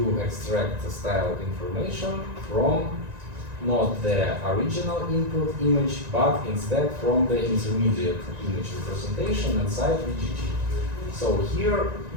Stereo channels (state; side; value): late; left; 1.9 ms